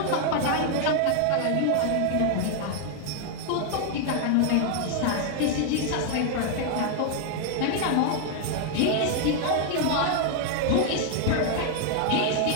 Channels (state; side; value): different; both; correlation 0.00